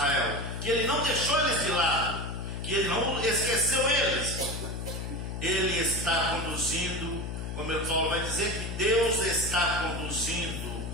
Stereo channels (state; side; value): noise; left; hum, 5 dB below the sound